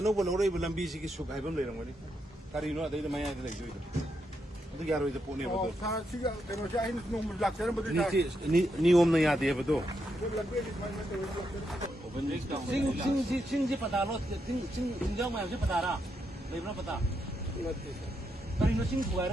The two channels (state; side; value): normal; both; correlation 0.81